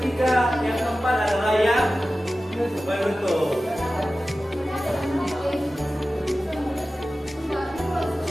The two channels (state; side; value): normal; both; correlation 0.95